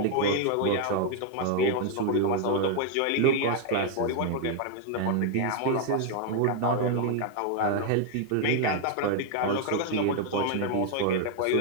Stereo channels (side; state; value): both; different; correlation 0.00